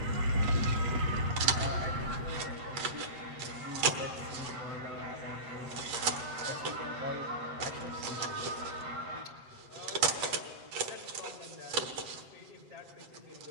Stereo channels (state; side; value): late; left; 7.8 ms